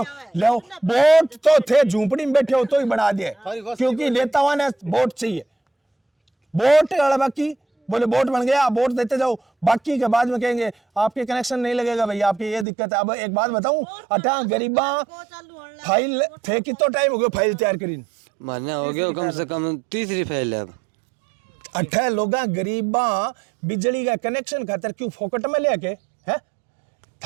लो बोट तो थे झूंपड़ी में बैठे हो तो ही बना दिए, क्योंकि नेताओं ने बोट चाहिए। बोट वाला बाकी बोले बोट बन गया, बोट देते जाओ, बाकी के बाद में कहेंगे आपके कनेक्शन नहीं लगेगा भैया, आपकी ये दिक्कत है। अब एक बात बताऊं, अठा गरीबा फाइल थे, कितना टाइम हो गया फाइल तैयार करी? महीना हो गया कम से कम, तीसरी फैल है अब। अठा लोगा गरीबा बिजली का कनेक्शन खातर क्यों फोकट में लेके है?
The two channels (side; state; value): left; drops out; at 12.7 s